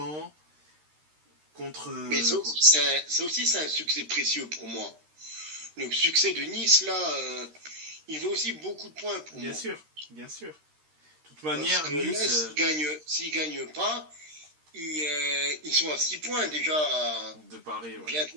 contre... Mais ça aussi, c'est un succès précieux pour moi. Le succès de Nice, là, il veut aussi beaucoup de points pour moi. Bien sûr. De toute manière, parce que Nice... là, s'ils ne gagnent pas, ils sont à 6 points déjà de Paris, ouais. Bientôt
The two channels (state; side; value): late; left; 13 ms